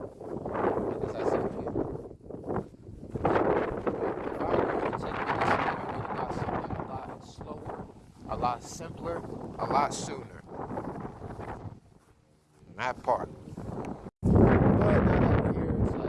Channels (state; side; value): identical; both; correlation 1.00